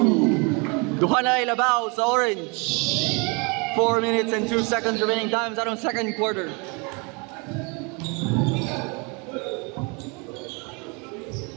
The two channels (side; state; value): left; quieter; 31.4 dB